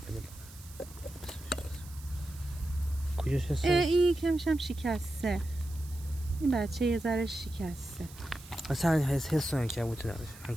کجاش حس؟ این کمشم شکسته. این بچه یه ذره شکسته. اصلا حس عنکبوتو نداره.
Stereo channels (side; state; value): right; noise; hiss, 19 dB below the sound